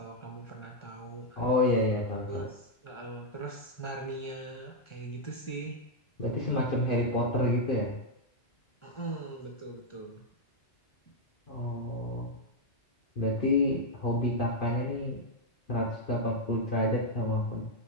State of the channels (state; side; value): late; right; 1.4 ms